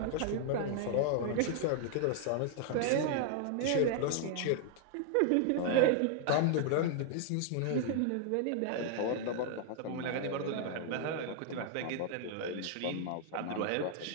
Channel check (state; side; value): different; both; correlation 0.00